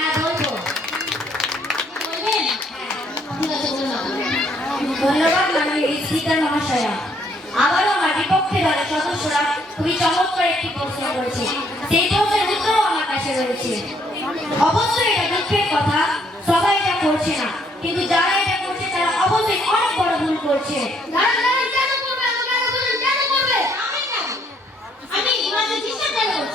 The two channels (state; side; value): normal; both; correlation 0.68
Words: বলবো। বলবেন? ঠিক আছে, বলুন আপনি। ধন্যবাদ মাননীয় স্পিকার মহাশয়া। আবারও আমার বিপক্ষে দলের সদস্যরা খুবই চমৎকার একটি প্রশ্ন করেছে, সেই প্রশ্নের উত্তরও আমার কাছে রয়েছে। অবশ্যই এটা দুঃখের কথা, সবাই এটা করছে না, কিন্তু যারা এটা করছে তারা অবশ্যই অনেক বড় ভুল করছে। আপনি ওনাদের ডিস্টার্ব কেন